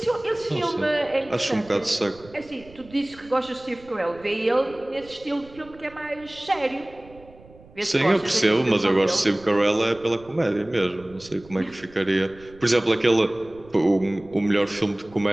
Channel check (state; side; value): noise; right; rumble, 23 dB below the sound